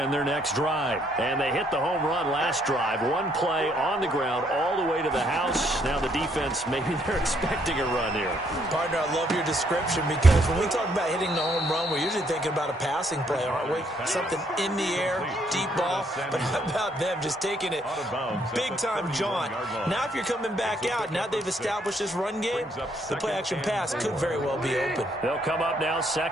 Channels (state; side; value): normal; both; correlation 0.70